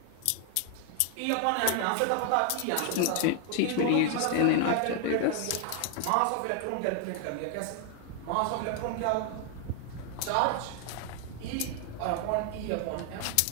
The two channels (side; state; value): both; different; correlation 0.00